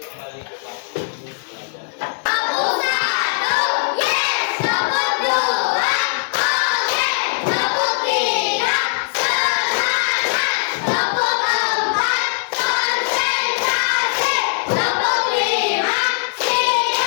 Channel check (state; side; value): silent; right; digital silence